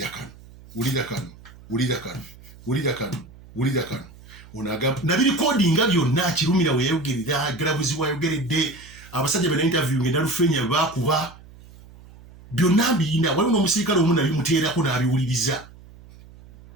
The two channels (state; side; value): noise; right; hum, 21 dB below the sound